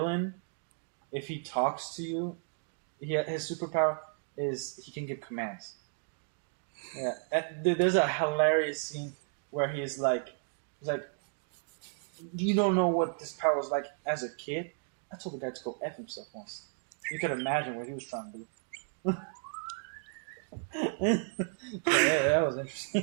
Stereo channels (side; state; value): left; silent; 55 dB below the other